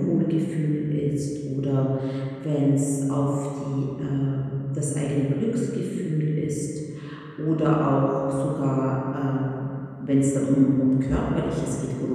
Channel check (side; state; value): both; identical; correlation 1.00